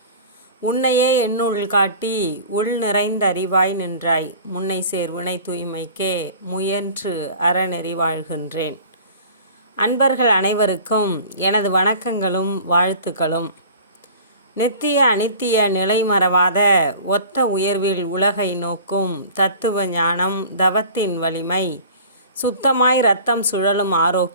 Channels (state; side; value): inverted; both; correlation -0.43